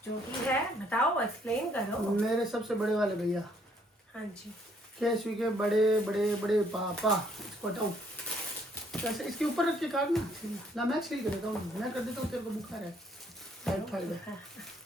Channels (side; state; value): both; normal; correlation 0.66